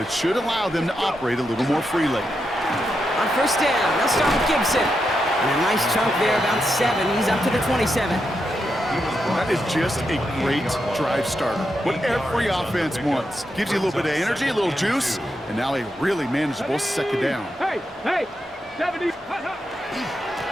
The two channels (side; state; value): both; normal; correlation 0.85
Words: it should allow them to operate a little more freely. On first down, they'll start with Gibson. And a nice chunk there, about 7. He's up to the 27. That is just a great drive starter. What every offense wants. Gives you a little bit of energy, a little juice, and now a really manageable second down. Hey, hey, 70.